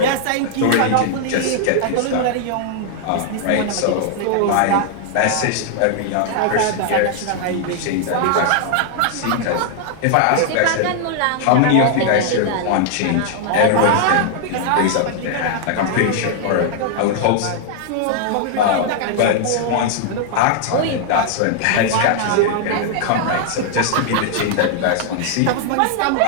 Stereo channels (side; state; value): both; different; correlation -0.01